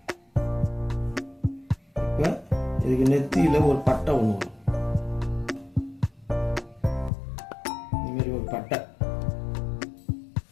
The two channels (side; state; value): right; drops out; at 7.1 s